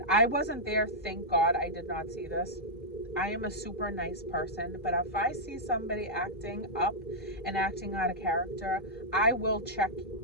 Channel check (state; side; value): normal; both; correlation -0.08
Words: I wasn't there. Thank God I did not see this. I am a super nice person, but if I see somebody acting up and acting out of character, I will check